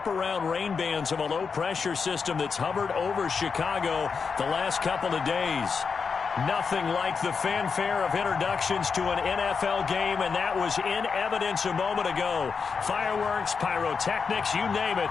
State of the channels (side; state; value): right; quieter; 5.5 dB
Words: rain bands of a low-pressure system that's hovered over Chicago the last couple of days. Nothing like the fanfare of introductions to an NFL game, and that was in evidence a moment ago. Fireworks, pyrotechnics, you name it,